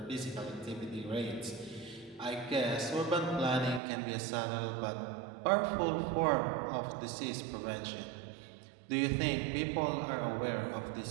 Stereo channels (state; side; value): drops out; left; at 3.8 s